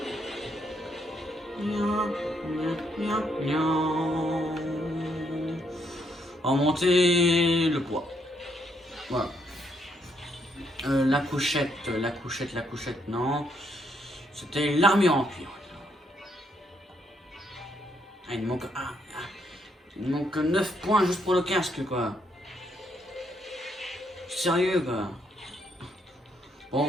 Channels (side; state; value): both; normal; correlation 0.74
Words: Remonter le poids. Voilà. La couchette, non. C'était l'armure en cuir. Ah, il me manque 9 points juste pour le casque, quoi. Sérieux, quoi. Bon,